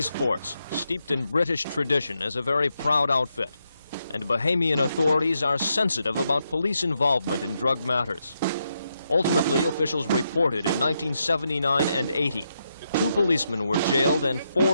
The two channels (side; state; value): both; inverted; correlation -0.82